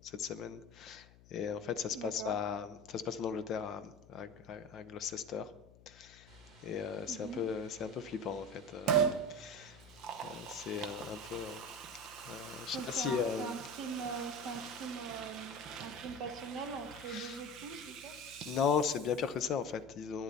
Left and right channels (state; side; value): noise; left; hum, 23 dB below the sound